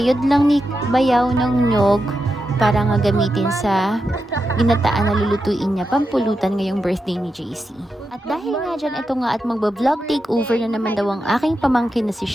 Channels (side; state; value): both; normal; correlation 0.88